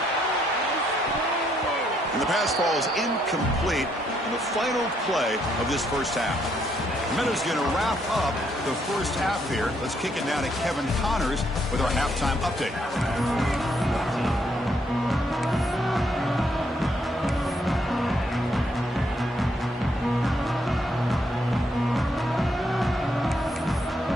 And the pass falls incomplete in the final play of this first half. Minutes going to wrap up the first half here. Let's kick it down to Kevin Connors with our halftime update.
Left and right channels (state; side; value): normal; both; correlation 0.73